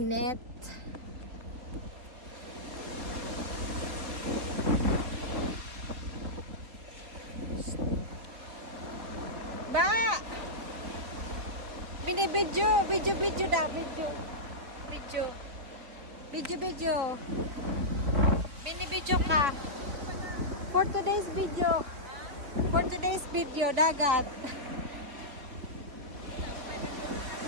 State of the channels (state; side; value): late; left; 3.6 ms